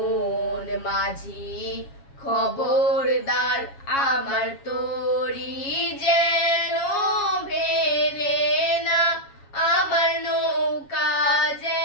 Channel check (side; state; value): right; late; 7.3 ms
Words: মাঝি খবরদার আমার তরি যেন ভেলে না, আমার নৌকা